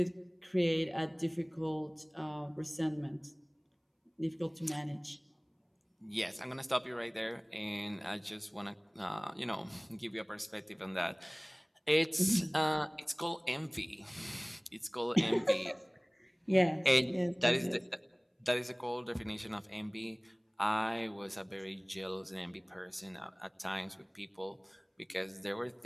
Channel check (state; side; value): identical; both; correlation 1.00